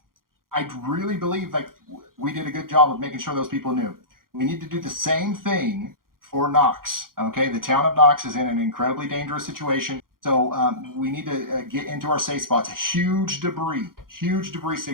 I really believe like we did a good job of making sure those people knew. We need to do the same thing for Knox. Okay, the town of Knox is in an incredibly dangerous situation, so we need to get into our safe spots. Huge debris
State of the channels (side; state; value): left; late; 0.91 ms